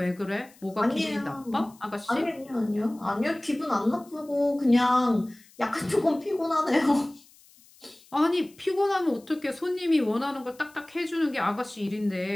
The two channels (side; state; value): left; noise; hiss, 27 dB below the sound